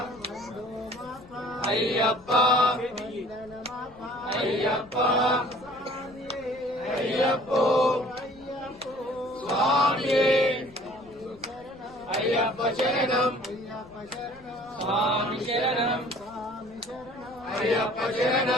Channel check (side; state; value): left; noise; rumble, 25 dB below the sound